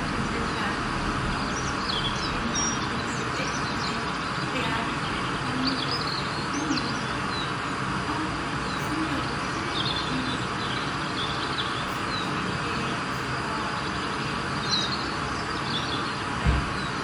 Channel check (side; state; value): both; identical; correlation 1.00